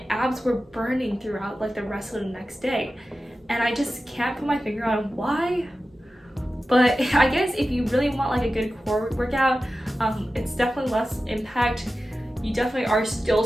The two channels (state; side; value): normal; both; correlation 0.94